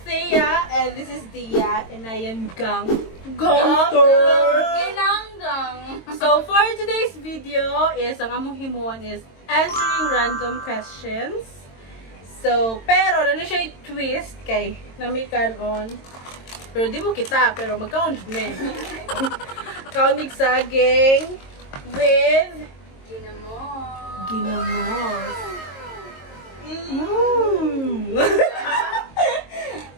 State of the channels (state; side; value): late; right; 22 ms